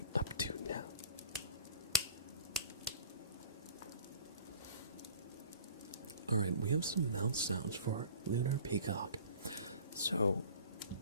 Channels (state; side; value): inverted; both; correlation -0.45